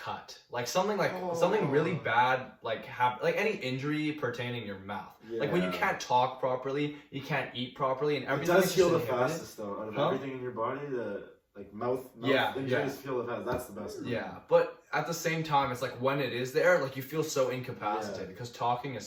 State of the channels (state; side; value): identical; both; correlation 1.00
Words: like something really bad, like any injury pertaining your mouth. Like when you can't talk properly, you can't eat properly, and It everything. does is heal the just inhibited. fastest though. Out of Huh? everything in your body, the like mouth Yeah, injuries heal the fastest. That's the best. Yeah, but at the same time, it's like when it is there, like you feel so incapacitated because talking is